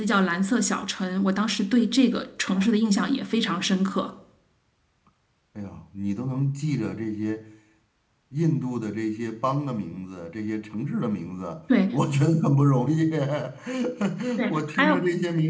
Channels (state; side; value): identical; both; correlation 1.00